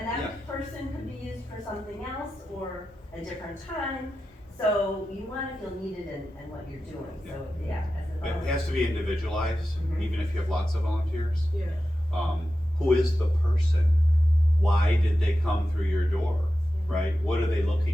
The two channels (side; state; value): both; normal; correlation 0.92